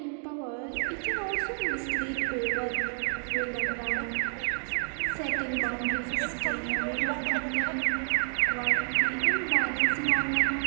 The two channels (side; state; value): left; silent; digital silence